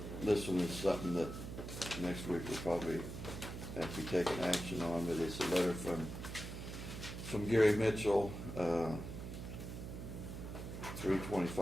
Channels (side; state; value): right; noise; hum, 8 dB below the sound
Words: This one is something that next week we'll probably have to be taking action on, but it's a letter from Gary Mitchell,